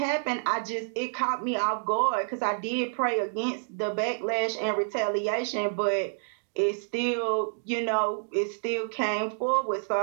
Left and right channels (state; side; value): silent; left; digital silence